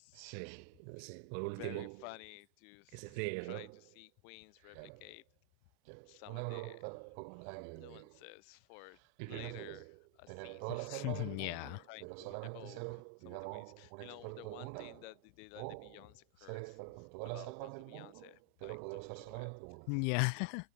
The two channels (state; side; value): different; both; correlation 0.00